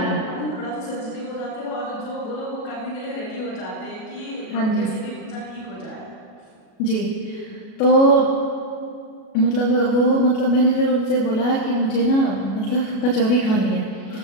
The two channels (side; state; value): right; late; 37 ms